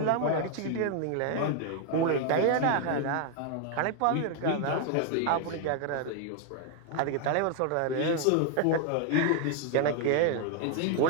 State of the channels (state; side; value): different; both; correlation 0.01